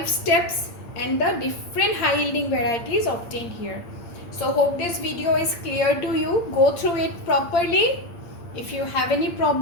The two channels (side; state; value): right; late; 8.7 ms